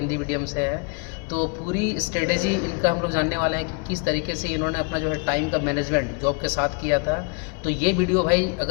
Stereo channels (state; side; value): quieter; right; 34.8 dB